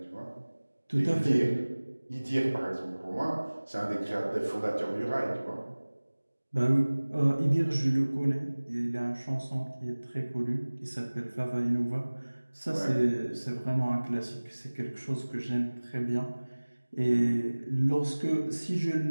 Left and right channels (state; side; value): inverted; both; correlation -1.00